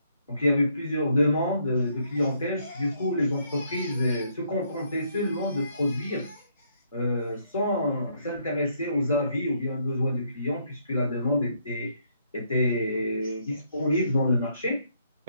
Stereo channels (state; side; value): inverted; both; correlation -0.71